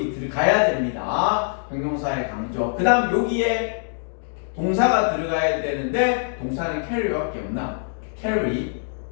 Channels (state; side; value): silent; right; 62 dB below the other